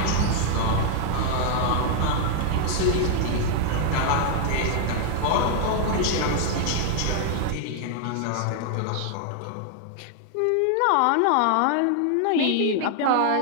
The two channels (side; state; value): both; different; correlation 0.00